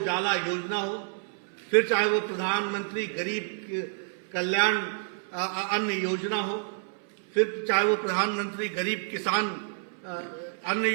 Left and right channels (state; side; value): silent; left; 59 dB below the other